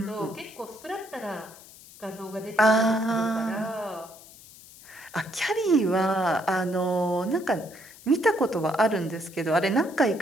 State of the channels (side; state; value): left; noise; hiss, 20 dB below the sound